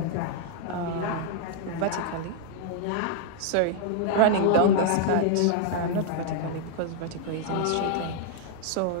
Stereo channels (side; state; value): both; different; correlation 0.00